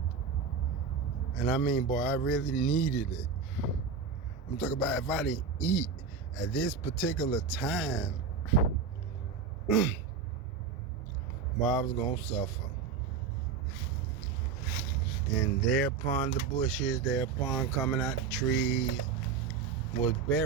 And I mean, boy, I really needed it. I'm talking about if I didn't eat at this particular time, Well, I was gonna suffer. And thereupon the bushes, thereupon coming out the trees, was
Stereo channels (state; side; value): quieter; left; 5.7 dB